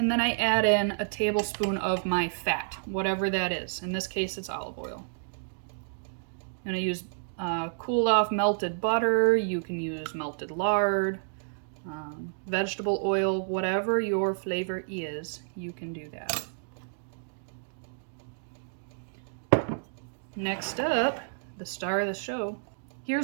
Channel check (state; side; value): silent; left; digital silence